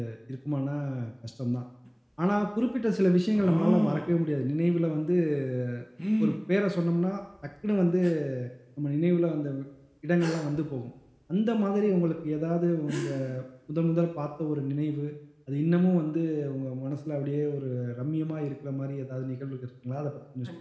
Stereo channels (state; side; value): identical; both; correlation 1.00